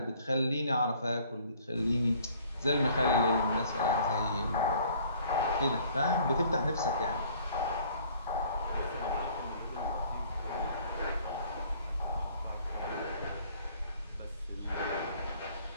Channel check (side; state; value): both; inverted; correlation -0.56